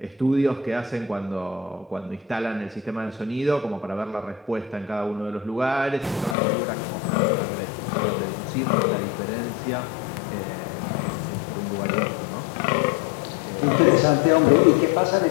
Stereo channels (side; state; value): right; drops out; at 6.4 s